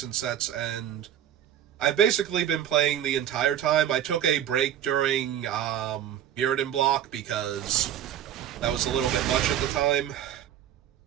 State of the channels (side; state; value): left; quieter; 10.5 dB